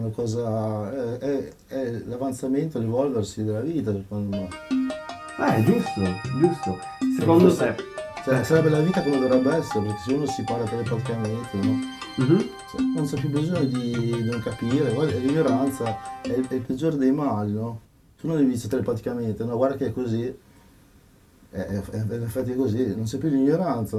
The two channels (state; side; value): identical; both; correlation 1.00